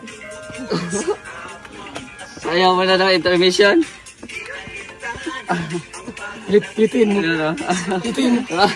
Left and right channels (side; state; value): both; identical; correlation 1.00